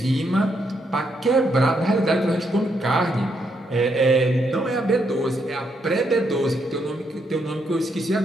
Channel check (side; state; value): both; normal; correlation 0.77